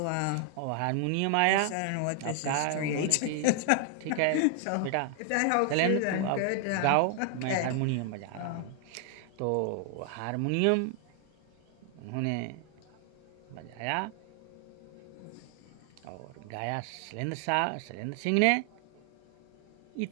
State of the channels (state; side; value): different; both; correlation 0.00